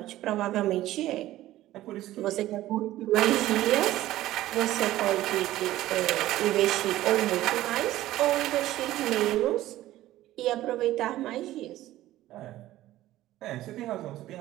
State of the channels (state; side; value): quieter; left; 15.1 dB